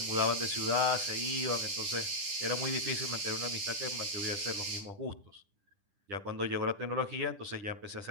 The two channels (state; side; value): late; left; 10 ms